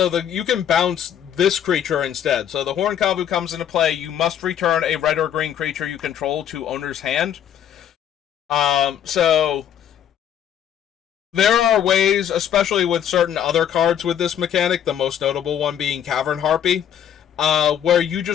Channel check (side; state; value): right; quieter; 9.6 dB